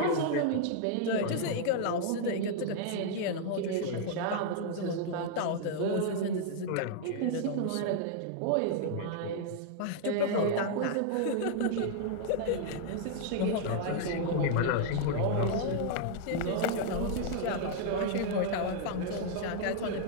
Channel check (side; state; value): both; different; correlation -0.01